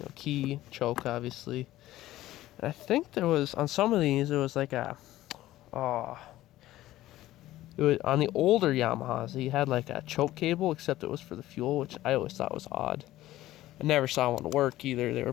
key, choke, obviously. And I think there was on some of these there was like it was on the older Yamahas. He had like a choke cable, except it was for the fuel, which I always thought was odd. I never saw one work either. They were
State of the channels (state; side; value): quieter; right; 15.3 dB